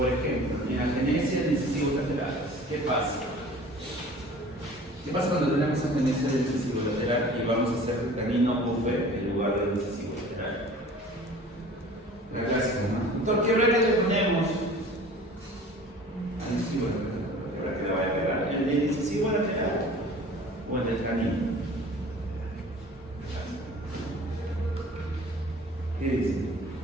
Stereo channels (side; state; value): both; normal; correlation 0.45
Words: ejemplo, en agenesia de incisivos laterales, ¿qué pasa? ¿Qué pasa cuando tenemos agenesia del incisivo lateral y vamos a hacer el canino UV en lugar del incisivo lateral? La clásica, ¿no? Entonces, ¿qué regla le ponemos al incisivo lateral? ¿Qué regla que le vaya a pegar? ¿El del incisivo lateral o el del canino? ¿Qué dice?